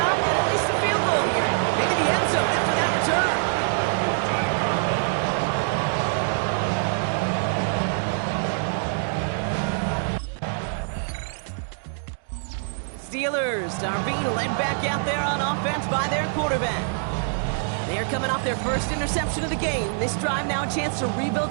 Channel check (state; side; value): silent; left; digital silence